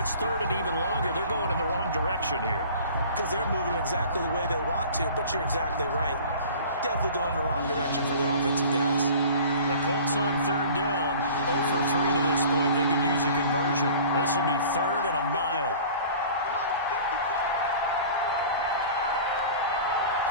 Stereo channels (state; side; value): inverted; both; correlation -0.44